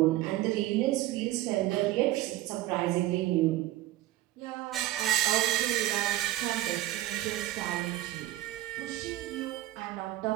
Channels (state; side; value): quieter; left; 15.4 dB